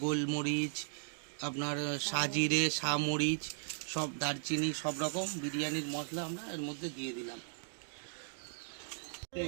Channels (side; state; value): left; silent; digital silence